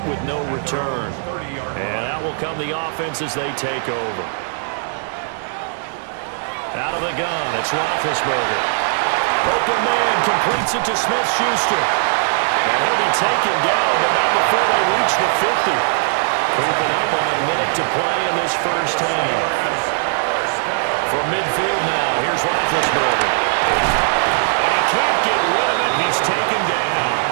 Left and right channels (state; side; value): silent; left; digital silence